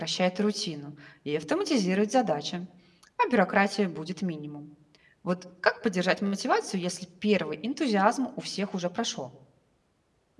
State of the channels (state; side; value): identical; both; correlation 1.00